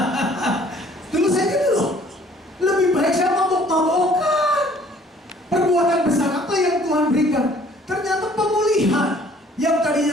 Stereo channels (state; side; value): normal; both; correlation 0.57